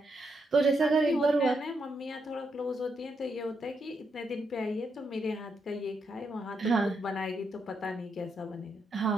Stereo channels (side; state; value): both; normal; correlation 0.80